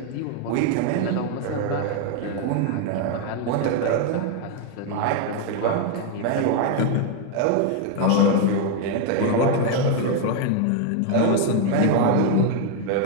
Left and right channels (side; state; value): both; different; correlation 0.00